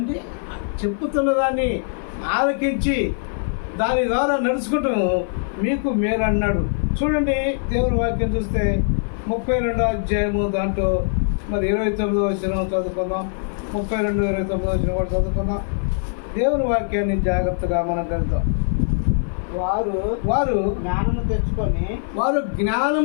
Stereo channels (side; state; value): right; silent; 56 dB below the other